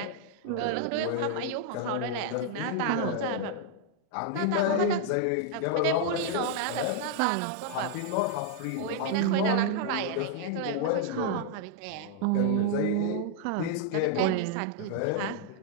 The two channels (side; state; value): both; different; correlation -0.01